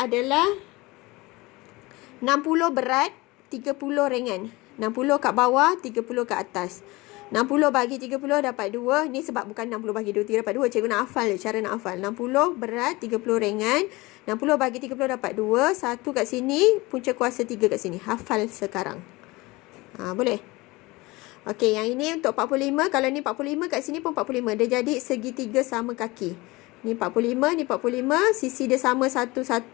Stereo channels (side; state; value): right; quieter; 22.1 dB